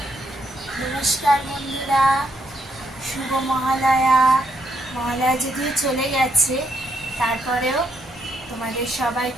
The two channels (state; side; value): normal; both; correlation 0.75